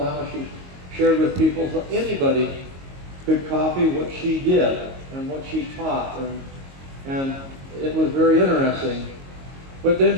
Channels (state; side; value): late; left; 22 ms